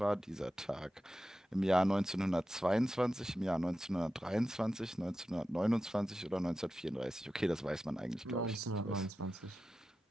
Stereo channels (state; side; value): normal; both; correlation 0.92